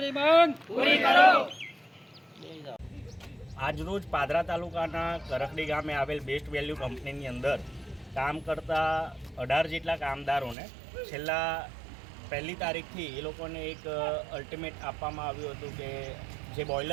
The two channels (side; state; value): left; drops out; at 10.6 s